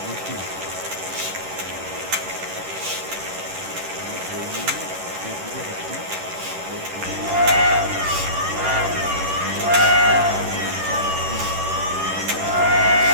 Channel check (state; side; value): late; left; 11 ms